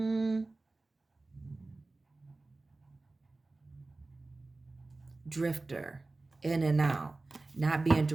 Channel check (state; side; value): quieter; left; 3.3 dB